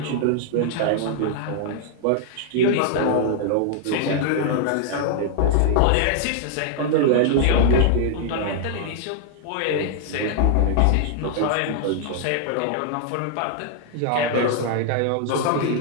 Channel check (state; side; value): different; both; correlation 0.00